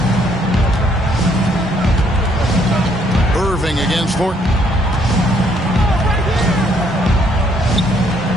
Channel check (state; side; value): normal; both; correlation 0.68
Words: Irving against Thornton.